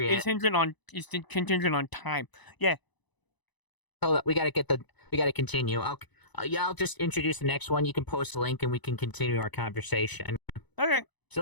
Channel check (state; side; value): late; right; 1.0 ms